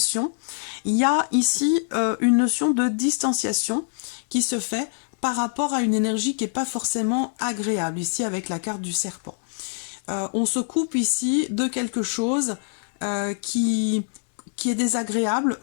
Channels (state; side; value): silent; right; digital silence